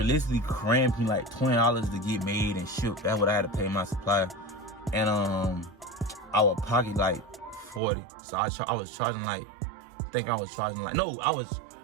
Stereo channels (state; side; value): drops out; left; at 7.8 s